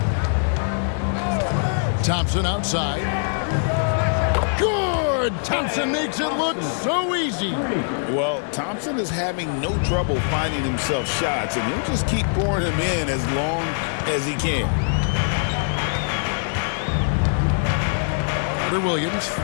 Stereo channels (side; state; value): right; silent; digital silence